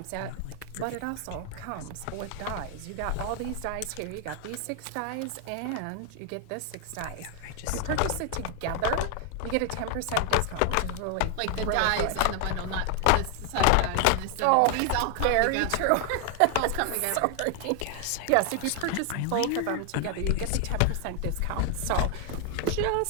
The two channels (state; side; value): different; both; correlation 0.00